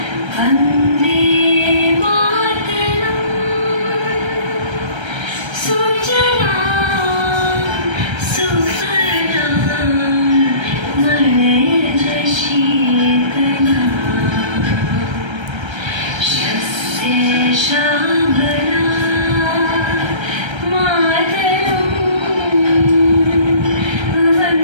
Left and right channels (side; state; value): left; late; 1.3 ms